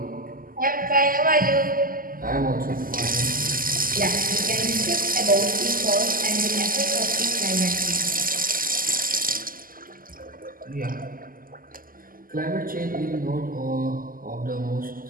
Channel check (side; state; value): left; late; 0.41 ms